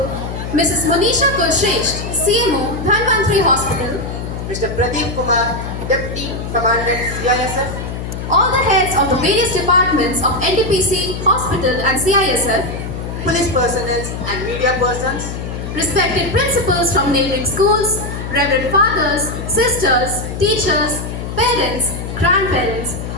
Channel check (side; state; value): left; noise; hum, 6 dB below the sound